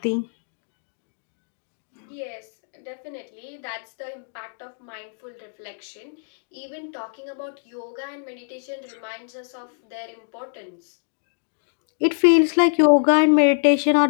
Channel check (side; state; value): right; silent; digital silence